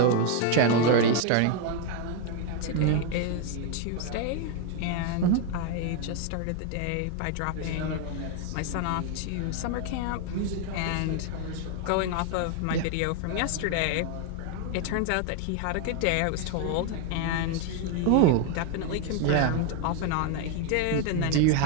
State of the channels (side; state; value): both; different; correlation 0.01